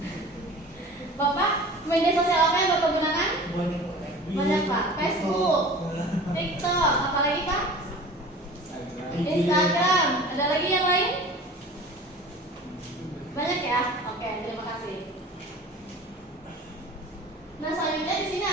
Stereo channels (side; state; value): both; normal; correlation 0.41